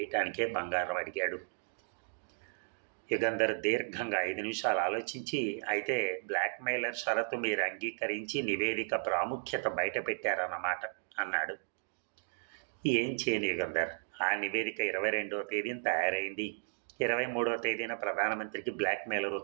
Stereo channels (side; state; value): left; silent; digital silence